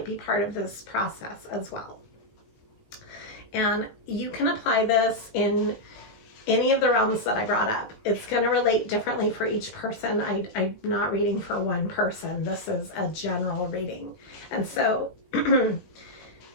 be part of this process as well. And you can apply this in any of the realms that I brought up. It's going to relate differently for each person. I'm not reading for one person. This is a general reading. And so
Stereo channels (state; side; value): late; right; 19 ms